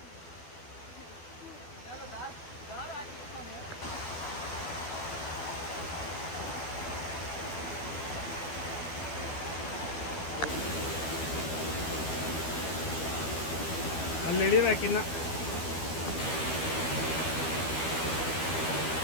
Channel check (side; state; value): right; late; 12 ms